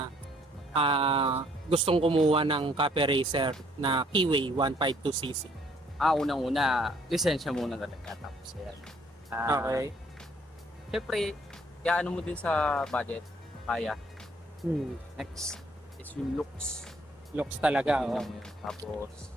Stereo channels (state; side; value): normal; both; correlation 0.64